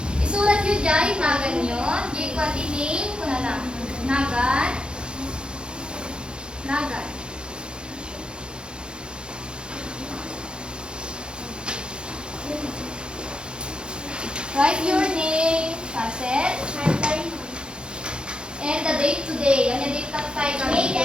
Isulat nyo dyan, nagan nyo. Di ko name ko na lang. Nagan. Nagan. Write your name, Faset. And the date today. Ano yung date tayo kami? May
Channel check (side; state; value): left; late; 0.051 ms